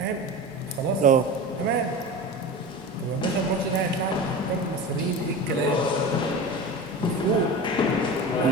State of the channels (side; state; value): both; normal; correlation 0.30